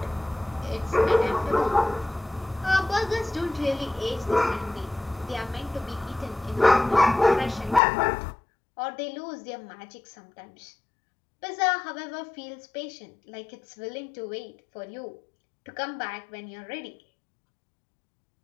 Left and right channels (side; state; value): right; drops out; at 7.8 s